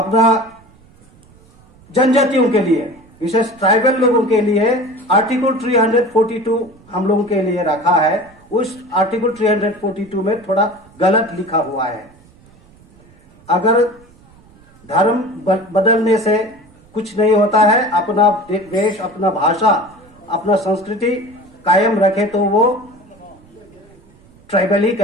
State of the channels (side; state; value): right; noise; rumble, 28 dB below the sound